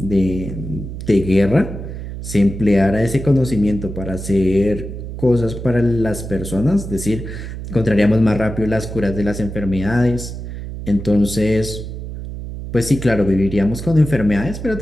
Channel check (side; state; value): right; noise; hum, 8 dB below the sound